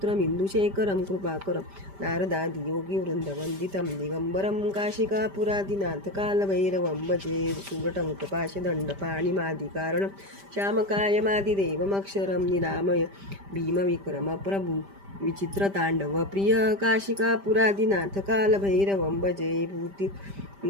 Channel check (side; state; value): left; late; 5.1 ms